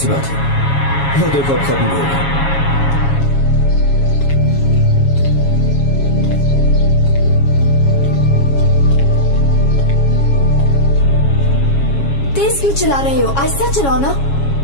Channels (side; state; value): right; late; 7.2 ms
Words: बात है? वो देखो अब खत्म भी होगा। तेज क्यों चला रहे हो? आहिस्ता चलाओ ना।